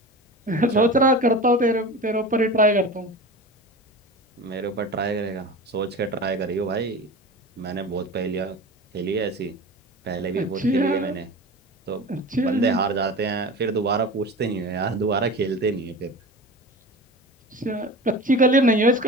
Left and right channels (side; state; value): both; normal; correlation 0.32